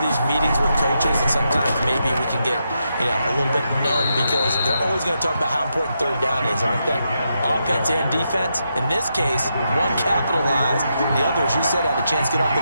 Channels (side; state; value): both; inverted; correlation -0.83